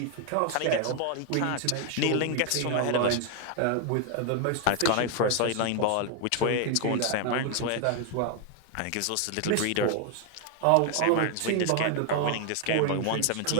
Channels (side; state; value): both; different; correlation 0.00